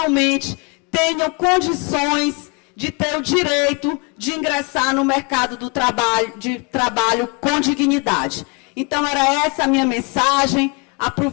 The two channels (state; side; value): quieter; right; 31.9 dB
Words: tenham condições de ter o direito de ingressar no mercado do trabalho com dignidade. Então, era essa a minha mensagem.